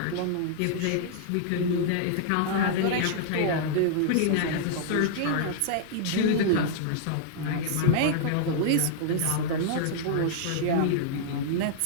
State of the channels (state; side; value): different; both; correlation -0.01